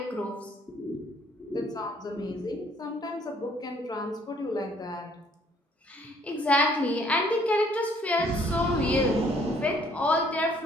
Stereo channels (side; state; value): both; normal; correlation 0.62